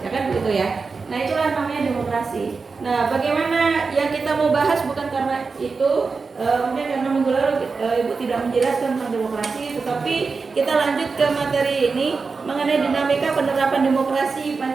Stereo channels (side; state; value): left; quieter; 4.6 dB